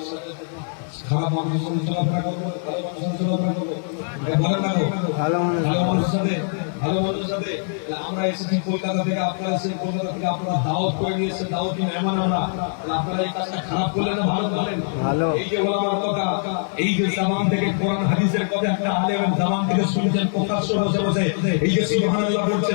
সাথে চলাফেরা করবো, ভালো মানুষের চলাফেরা করবো। ভালো থাকো, ভালো মানুষের সাথে আমরা এসেছি কলকাতা থেকে, আপনারা এসে কলকাতা থেকে আপনারা দাওয়াত করে নিয়ে এসে দাওয়াতি মেহমান আমরা, আপনারা এই কাজটা খারাপ করলেন না, ভালো করলেন। এই যে ওলামার কথা, এই যে জামান থেকে কোরআন হাদিসের কথা একটা আলেম জামান থেকে শুনছেন প্রকাশ্য বসে বসে, এই যে সুবহানাল্লাহ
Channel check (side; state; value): right; silent; digital silence